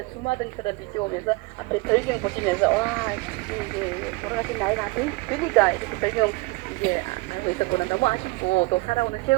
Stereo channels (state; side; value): quieter; left; 24.7 dB